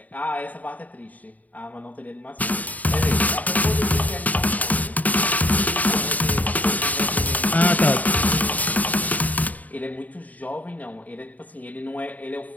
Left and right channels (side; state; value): right; late; 0.075 ms